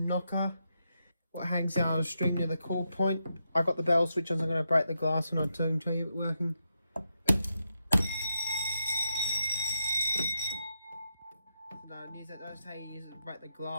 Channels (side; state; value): both; inverted; correlation -0.85